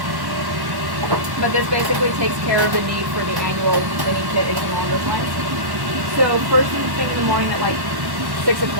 But this basically takes care of the need for the annual cleaning kit, anything along those lines. So first thing in the morning at like 6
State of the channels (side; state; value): left; late; 1.1 ms